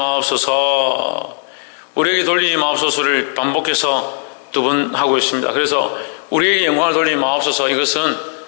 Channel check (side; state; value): right; silent; 64 dB below the other